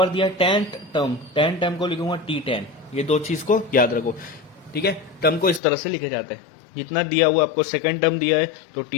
दिया 10th टर्म, 10 टर्म को लिखूंगा T10। ये दो चीज को याद रखो, ठीक है। टर्म को इस तरह से लिखे जाते हैं, जितना दिया हुआ आपको, सेकंड टर्म दिया है तो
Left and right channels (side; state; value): right; drops out; at 5.6 s